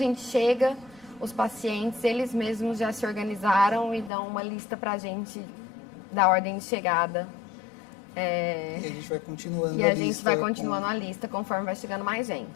chega, os pacientes, eles mesmos já se organizaram e dão uma lista pra gente da ordem de chegada. E a gente vai continuando a lista conforme vai chegando mais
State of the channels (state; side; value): drops out; right; at 4.1 s